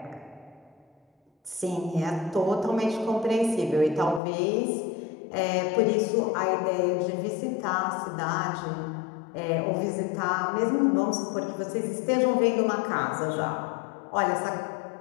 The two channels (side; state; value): right; drops out; at 4.2 s